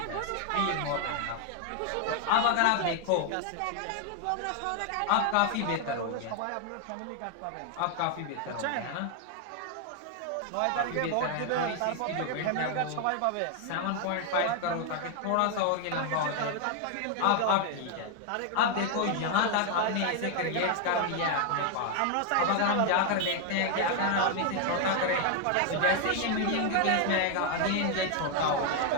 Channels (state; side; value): different; both; correlation 0.00